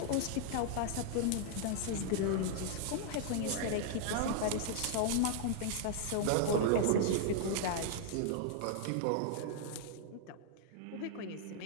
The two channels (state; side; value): different; both; correlation 0.00